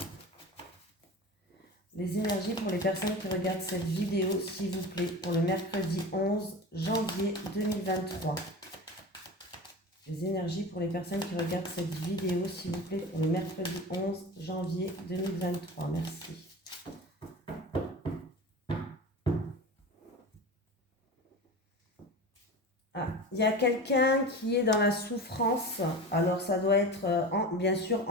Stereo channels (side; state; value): both; normal; correlation 0.31